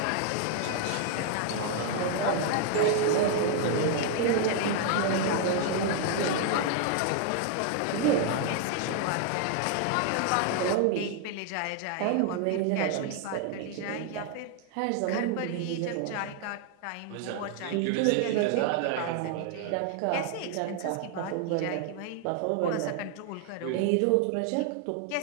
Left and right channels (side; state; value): both; different; correlation 0.00